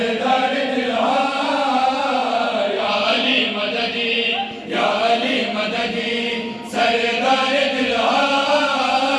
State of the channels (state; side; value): identical; both; correlation 1.00